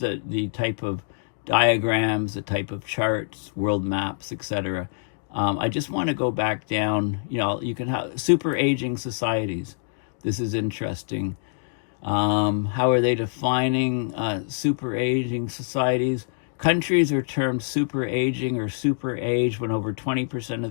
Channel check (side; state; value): right; silent; digital silence